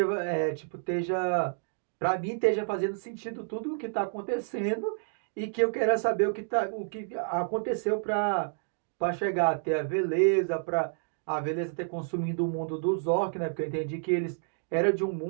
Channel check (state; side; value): silent; left; digital silence